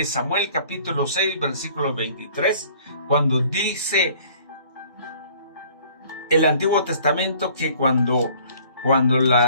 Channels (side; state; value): both; inverted; correlation -0.55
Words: Samuel capítulo 6 versículo 23, cuando dice el Antiguo Testamento que cuando